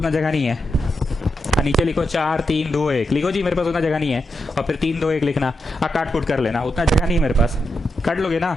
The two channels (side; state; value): both; normal; correlation 0.86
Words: जगह नहीं है। नीचे लिखो 4 3 2 1, लिखो जी, मेरे पास उतना जगह नहीं है। और फिर 3 2 1 लिखना, काट कुट कर लेना, उतना जगह नहीं है मेरे पास, काट लोगे ना?